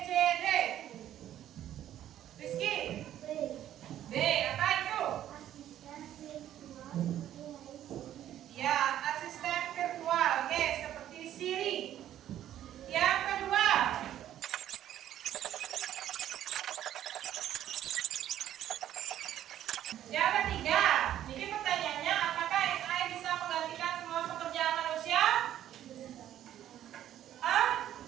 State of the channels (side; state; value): left; quieter; 11.7 dB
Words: C, D. Rizky? B. Apa itu? Ya, asisten virtual. Oke, seperti Siri. Yang kedua, yang ketiga, ini pertanyaannya, apakah AI bisa menggantikan semua pekerjaan manusia?